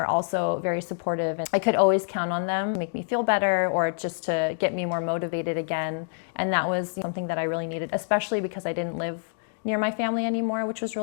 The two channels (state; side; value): silent; right; digital silence